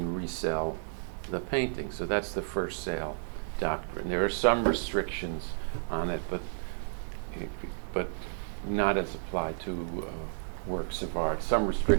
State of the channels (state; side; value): silent; left; digital silence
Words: resell the painting. So that's the first sale doctrine. There are some restrictions on it, but not as applied to works of art. Some